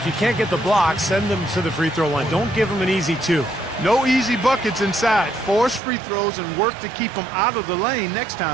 you can't get the block, send them to the free throw line. Don't give them an easy 2. No easy buckets inside. Force free throws and work to keep them out of the lane next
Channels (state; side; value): drops out; left; at 5.8 s